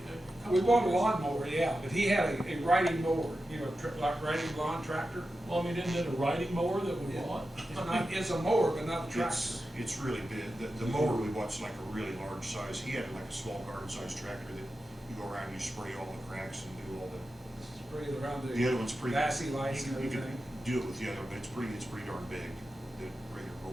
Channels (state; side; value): normal; both; correlation 0.91